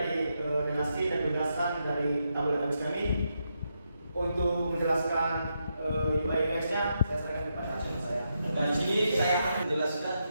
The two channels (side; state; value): both; inverted; correlation -0.82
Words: relasi dan penjelasan dari tabel database kami. Untuk menjelaskan UI UX-nya, saya serahkan kepada Aceh saya. Dan di sini saya akan menjelaskan